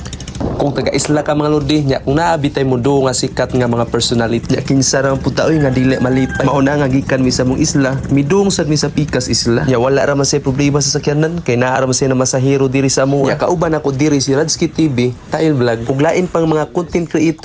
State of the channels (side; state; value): both; identical; correlation 1.00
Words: Kung taga-isla ka mga lodi nya kung naabitay mo do nga sikat nga mga personality nya kinsa ra puta oy nga dili malipay mauna nga gikan mi sa mong isla midung sad mi sa pikas isla nya wala ra man say problema sa sakyanan kay naa ra man say na masahero diri sa amo nya kauban ako diri si Radski TV Tail Vlog ug lain pang mga content